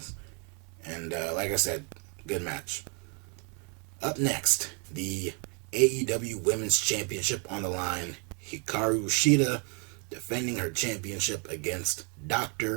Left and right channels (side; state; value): left; quieter; 36.2 dB